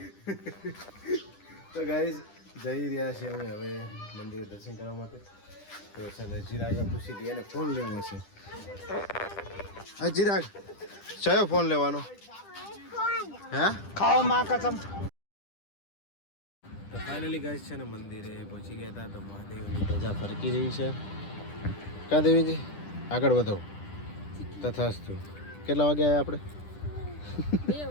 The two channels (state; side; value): late; right; 10 ms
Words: તો ગાઈઝ જઈ રહ્યા છે અમે હવે મંદિરે દર્શન કરવા માટે તો છે ને ચિરાગને પૂછી દઈએ ને ફોન લેવો છે હા ચિરાગ કયો ફોન લેવાનો હે ખાઓ માં કસમ તો ફાઇનલી ગાઈઝ છે ને મંદિરે પહોંચી ગયા હતા તો મહાદેવની ધજા ફરકી રહી છે કા દેવીજી આગળ વધો તથાસ્તુ કેટલા વાગે આવ્યા આપણે 2